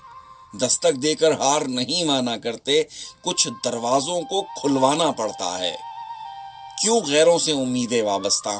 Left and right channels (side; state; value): both; identical; correlation 1.00